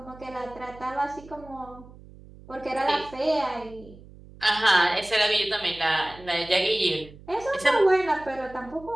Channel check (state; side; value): noise; right; hum, 20 dB below the sound